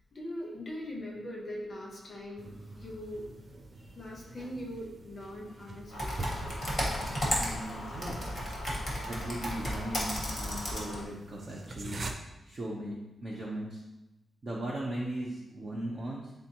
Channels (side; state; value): both; normal; correlation 0.87